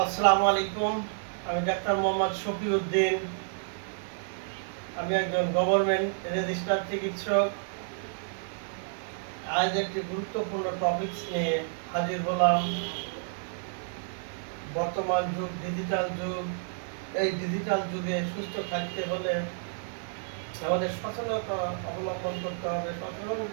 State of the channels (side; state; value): left; silent; 58 dB below the other